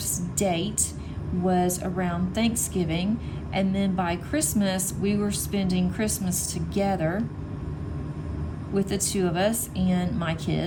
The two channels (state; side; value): identical; both; correlation 1.00